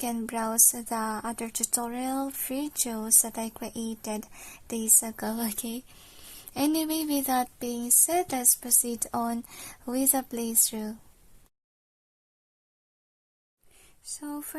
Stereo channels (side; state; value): both; identical; correlation 1.00